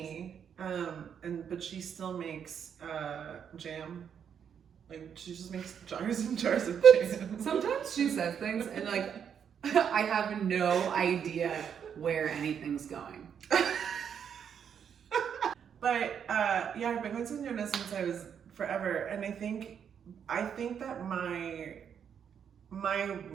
But she still makes jam. Like she just makes jars and jars of jam. Sometimes she says things and like I have no idea where anything's going. But yeah, I've been going to señoras since I was forever, and I think that my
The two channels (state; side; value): quieter; left; 7.9 dB